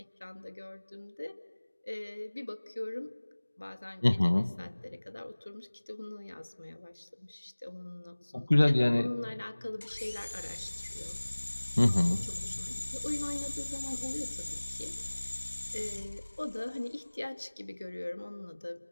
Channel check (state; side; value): inverted; both; correlation -1.00